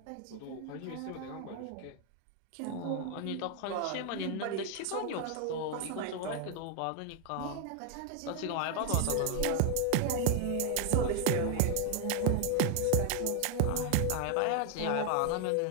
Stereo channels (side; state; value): both; different; correlation 0.00